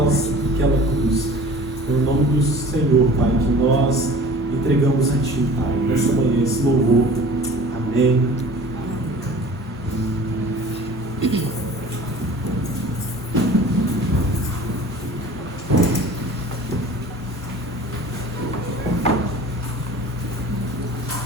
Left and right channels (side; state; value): both; normal; correlation 0.44